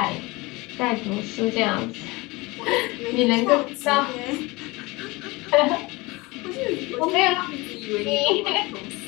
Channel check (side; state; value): right; quieter; 23.6 dB